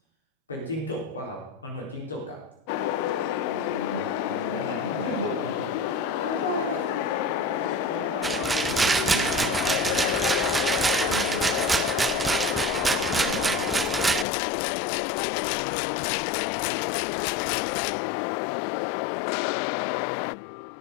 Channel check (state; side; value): drops out; right; at 14.2 s